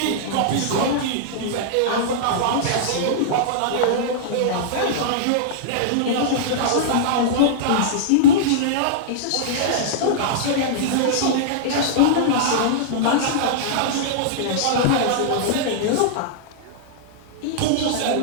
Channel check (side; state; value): both; different; correlation -0.02